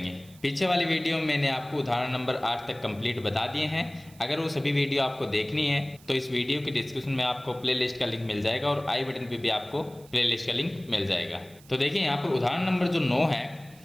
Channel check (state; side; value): noise; right; hiss, 25 dB below the sound